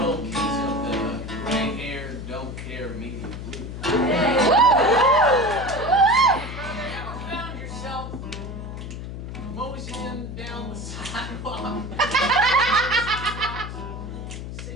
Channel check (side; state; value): left; noise; hum, 8 dB below the sound